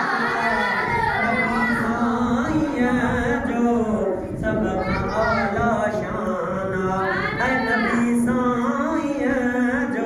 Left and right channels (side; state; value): both; identical; correlation 1.00